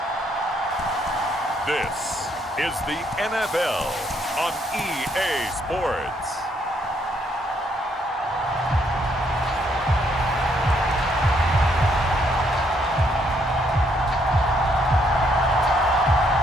this is the NFL on EA Sports.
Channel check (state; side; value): normal; both; correlation 0.71